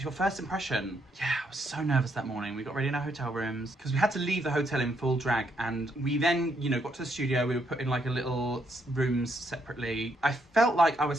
your first impression. Yeah, I was so nervous that morning. We got ready in our hotel rooms because we had to leave the hotel in full drag, and we then, got to the studio. We were put in like a little rooms separately. I felt like I was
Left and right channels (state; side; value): normal; both; correlation 0.75